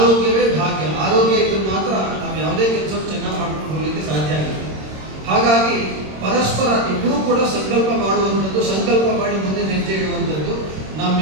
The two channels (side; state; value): left; late; 26 ms